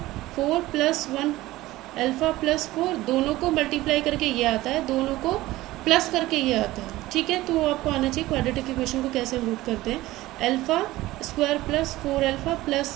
4 plus 1 alpha plus 4, दोनों को मल्टीप्लाई करके ये आता है, दोनों को प्लस करके ये आता है। ठीक है, तो आपको आना चाहिए क्वाड्रेटिक इक्वेशन को कैसे हम रूट करते हैं। Alpha square plus 4 alpha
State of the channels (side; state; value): left; quieter; 17.5 dB